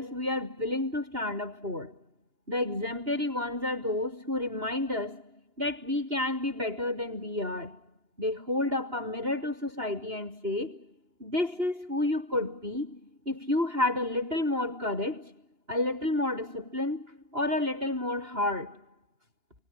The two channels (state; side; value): late; left; 2.9 ms